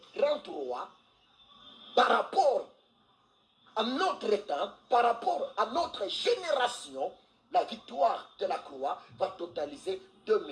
par rapport à notre temps, par rapport à notre génération, la victoire de la croix va totaliser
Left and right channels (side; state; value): both; identical; correlation 1.00